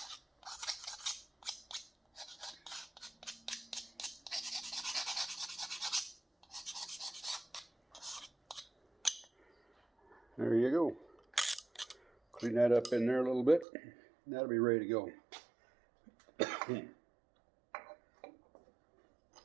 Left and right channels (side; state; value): left; drops out; at 13.7 s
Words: There you go. Clean that up in there a little bit. That'll be ready to go. Okay,